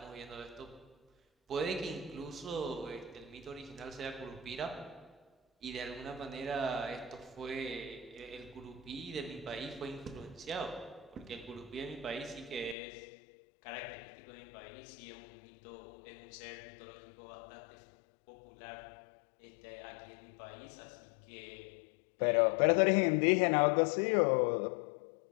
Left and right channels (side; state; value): right; drops out; at 12.8 s